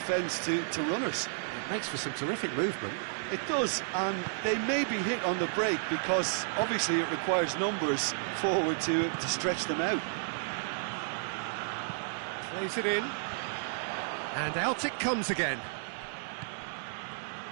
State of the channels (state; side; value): silent; left; digital silence